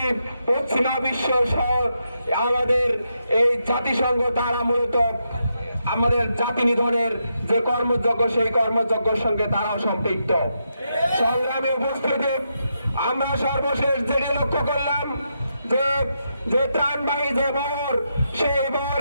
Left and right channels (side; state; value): both; inverted; correlation -0.83